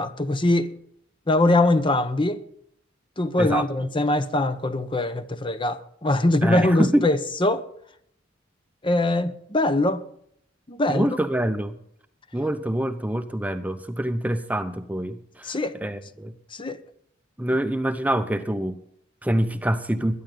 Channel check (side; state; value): both; normal; correlation 0.73